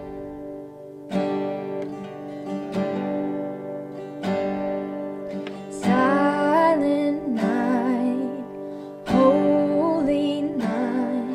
Silent night, holy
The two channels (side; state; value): both; identical; correlation 1.00